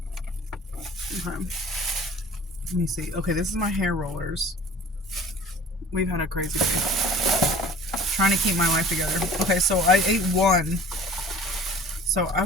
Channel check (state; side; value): normal; both; correlation 0.45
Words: Okay. Let me see. Okay, this is my hair rollers. We've had a crazy day. Trying to keep my life together. Okay, so I ate one. So I